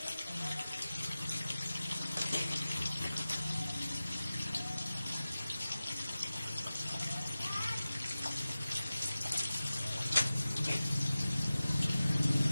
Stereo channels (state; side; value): inverted; both; correlation -0.96